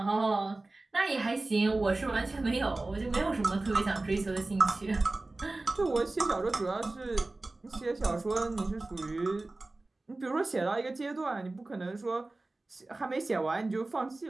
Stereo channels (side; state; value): left; quieter; 3.1 dB